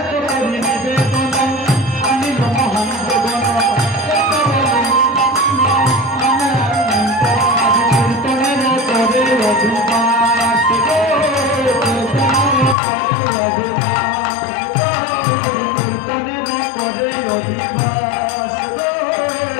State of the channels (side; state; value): right; drops out; at 12.8 s